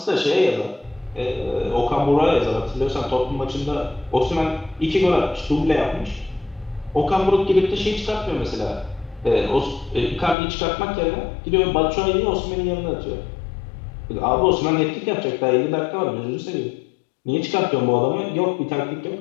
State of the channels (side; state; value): right; drops out; at 10.4 s